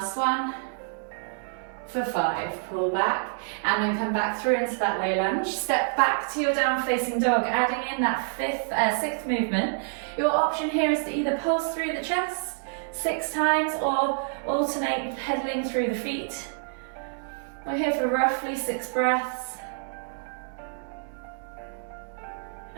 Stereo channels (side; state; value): left; silent; 60 dB below the other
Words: one, for 5. Pull back and then come back through into that low lunge. Step back to your down facing dog, adding in that 6th movement. Your option here is to either pulse through the chest 6 times or alternate pedaling through the feet. We're here for roughly 6 breaths.